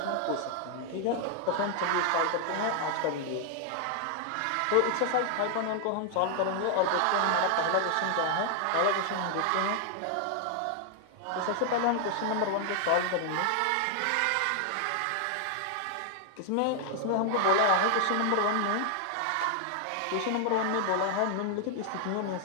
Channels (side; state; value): both; different; correlation 0.00